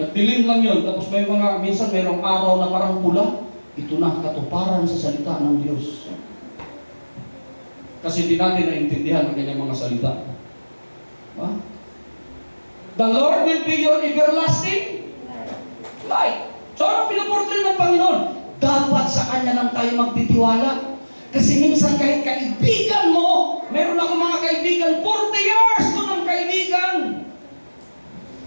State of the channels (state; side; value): inverted; both; correlation -1.00